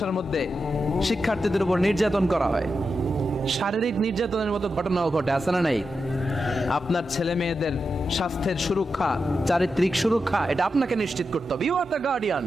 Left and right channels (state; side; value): normal; both; correlation 0.88